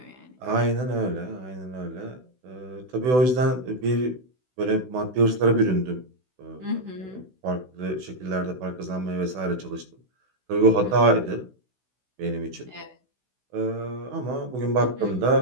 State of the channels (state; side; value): late; left; 16 ms